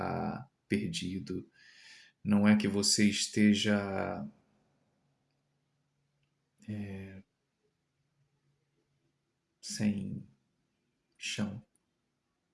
perdido, não é que você esteja sem chão.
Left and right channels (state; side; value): identical; both; correlation 1.00